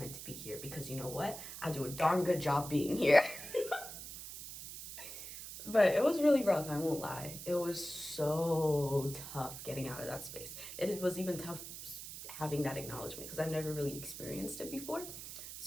to be here. Because you know what? I do a darn good job being here. But it was really rough, I won't lie. It was so tough getting out of that space. It was even tough having that acknowledgement because I've never really experienced it before.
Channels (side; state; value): right; noise; hiss, 10 dB below the sound